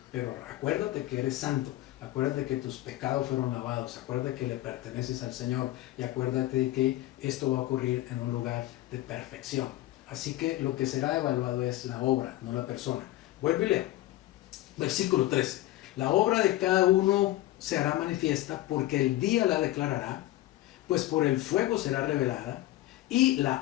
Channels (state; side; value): quieter; right; 15.8 dB